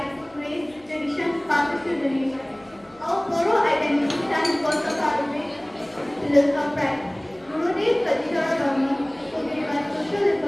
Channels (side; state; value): left; noise; hum, 30 dB below the sound